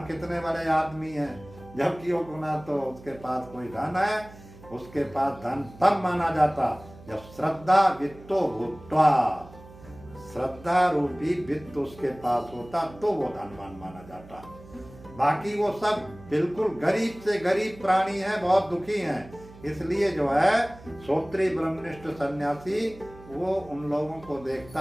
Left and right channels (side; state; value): right; noise; hum, 20 dB below the sound